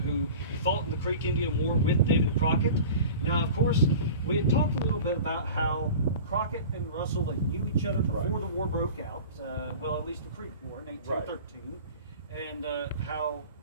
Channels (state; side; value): inverted; both; correlation -0.38